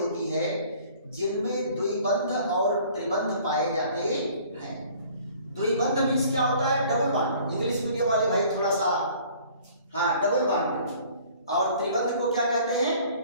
है जिनमें द्विबंध और त्रिबंध पाए जाते हैं। द्विबंध मीन्स क्या होता है? Double bond. इंग्लिश मीडियम वाले भाई थोड़ा सा डबल बॉन्ड। और त्रिबंध को क्या कहते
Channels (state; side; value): inverted; both; correlation -0.53